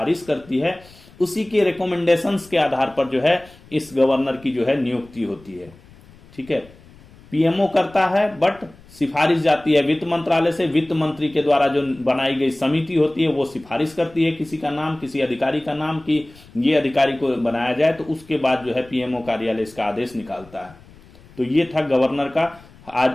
करती है, उसी के रिकमेंडेशंस के आधार पर जो है इस गवर्नर की जो है नियुक्ति होती है, ठीक है। पीएमओ करता है बट सिफारिश जाती है वित्त मंत्रालय से, वित्त मंत्री के द्वारा जो बनाई गई समिति होती है वो सिफारिश करती है किसी का नाम, किसी अधिकारी का नाम, कि ये अधिकारी को बनाया जाए, तो उसके बाद जो है पीएमओ कार्यालय इसका आदेश निकालता है। तो ये था गवर्नर का।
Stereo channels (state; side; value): noise; left; rumble, 24 dB below the sound